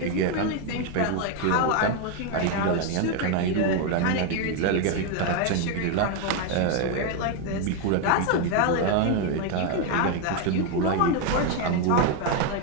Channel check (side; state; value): both; different; correlation 0.01